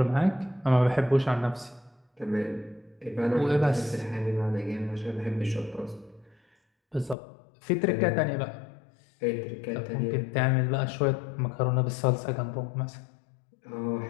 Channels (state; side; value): drops out; right; at 7.2 s